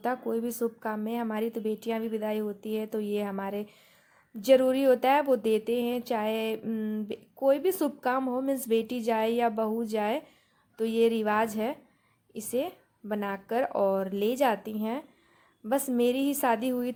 है, कोई भी शुभ काम में। हमारी तो बेटियाँ भी विदाई होती है, तो ये हमारे ज़रूरी होता है, वो देते हैं। चाहे कोई भी शुभ काम हो, मीन्स बेटी जाए या बहू जाए, तो ये रिवाज है, इसे बनाकर और ले जाती हैं बस मेरी ही शादी हुई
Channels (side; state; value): both; identical; correlation 1.00